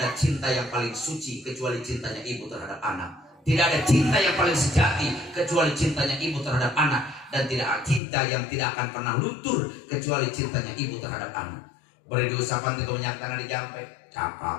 ada cinta yang paling suci kecuali cintanya ibu terhadap anak. Tidak ada cinta yang paling sejati kecuali cintanya ibu terhadap anak. Dan tidak ada cinta yang tidak akan pernah luntur kecuali cintanya ibu terhadap anak. Beri diusapan itu minyak tanah dijampe.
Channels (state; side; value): drops out; right; at 8.0 s